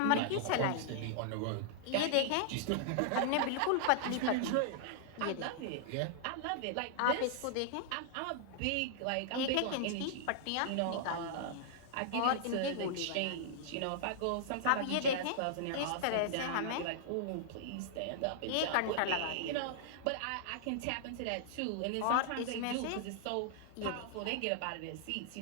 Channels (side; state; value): both; different; correlation -0.01